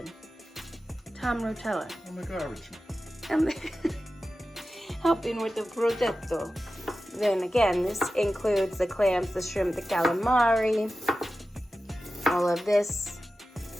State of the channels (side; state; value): both; normal; correlation 0.93